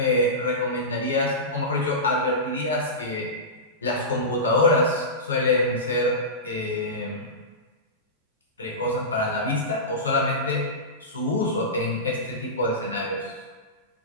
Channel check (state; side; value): normal; both; correlation -0.19